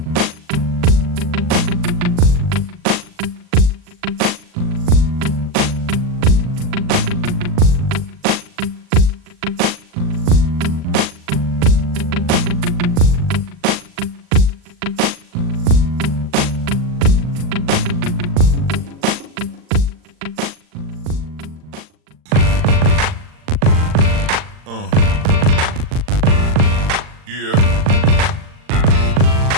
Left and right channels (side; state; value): left; late; 39 ms